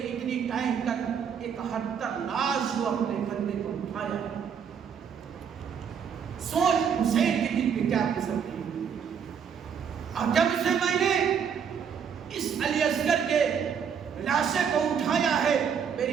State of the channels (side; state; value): left; quieter; 7.3 dB